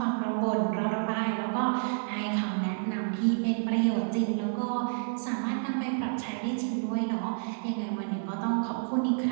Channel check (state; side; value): silent; left; digital silence